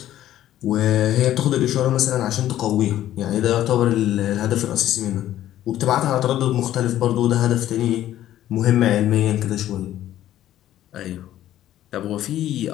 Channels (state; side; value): quieter; right; 12.7 dB